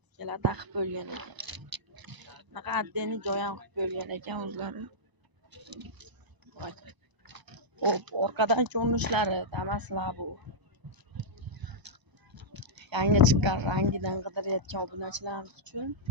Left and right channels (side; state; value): left; late; 1.0 ms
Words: ikkala taqib bo'lgan ekan. Bunaqa addeni joy ham qilib bo'lgan ekan o'zlari. Xo'p, orqadan ko'rinishlari Damas Labo. Yangi chiqqan rangidan qidirayotgan obunachilarimiz uchun